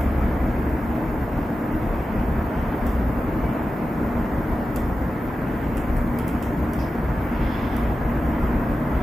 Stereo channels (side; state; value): both; normal; correlation 0.93